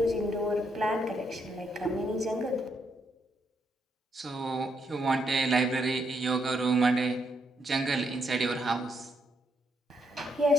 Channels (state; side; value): normal; both; correlation 0.77